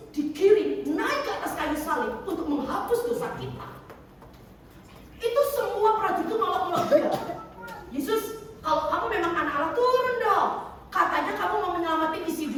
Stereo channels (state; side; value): identical; both; correlation 1.00